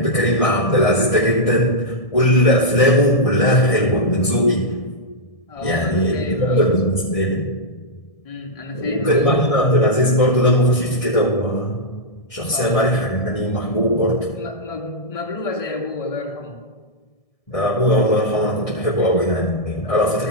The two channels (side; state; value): right; late; 1.6 ms